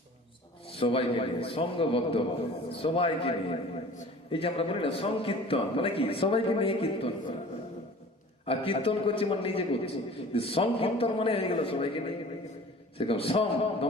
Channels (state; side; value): normal; both; correlation 0.44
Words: সবাইকে নিয়ে, সঙ্গবদ্ধ হবে, সবাইকে নিয়ে। এই যে আমরা বলি না সংকীর্তন, মানে কি? সবাইকে নিয়ে কীর্তন করা। আর কীর্তন করছি মানে নিজে করছি, সংকীর্তন মানে হয়ে গেল সবাইকে নিয়ে। সেরকম সম